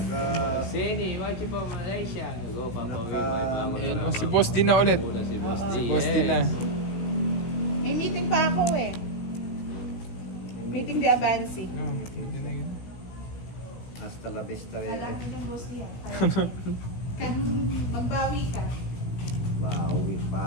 Sini, watch you from Malaysia. Go, Papa. Ayan, si Boss din na ulit. Muna si Boss D. Boss din na. May meeting pa ako eh. Meeting di Abansi. Oh, pwede na yun. Hasta la vista, Alam bebe. ko ng boss niya. Kan magbawi ka. Bawi.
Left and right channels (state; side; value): late; right; 16 ms